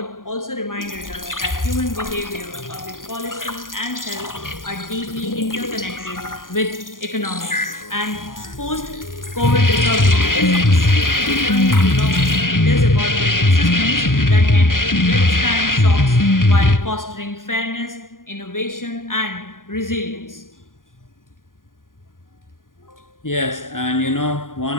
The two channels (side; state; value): right; late; 0.90 ms